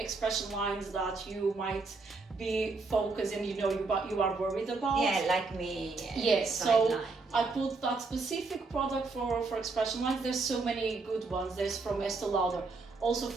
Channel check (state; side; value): quieter; left; 4.0 dB